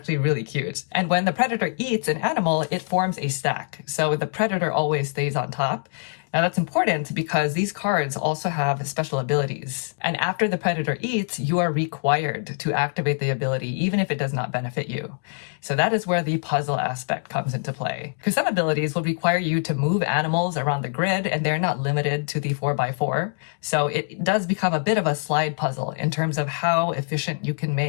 really cute. And when the predator eats an animal, it forms a stack. So the predator always stays on top. Now that's important because these cards also have special abilities. And after the predator eats, you are required to activate the ability, even if it does not benefit you. So that is where the puzzle aspect comes into play. Because some abilities will require you to move animals around the grid, and they're not limited to the 4x4. So it does become a bit of a slide puzzle in terms of how efficient you can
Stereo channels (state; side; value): silent; right; digital silence